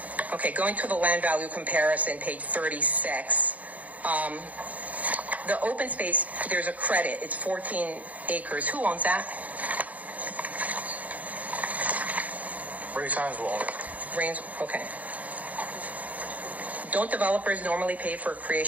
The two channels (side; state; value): left; late; 0.074 ms